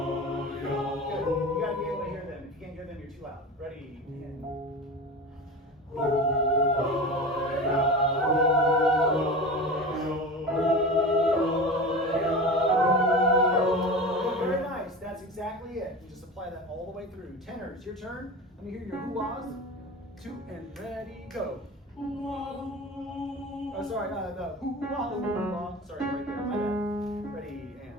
You gotta be able to hear them. If you can't hear them, you're too loud. Ready and very nice. That's exactly it. You just apply that all the way through. Tenors, your turn. Let me hear your hoo-ahs. 2 and ready, go. Oh, sorry, the hoo-ah, hoo-ah. Sorry, right there. My bad. Ready and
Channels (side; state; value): both; normal; correlation 0.30